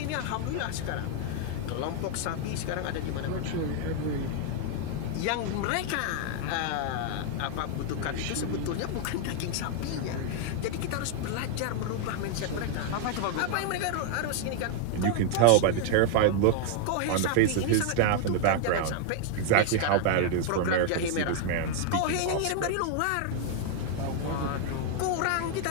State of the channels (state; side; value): different; both; correlation 0.00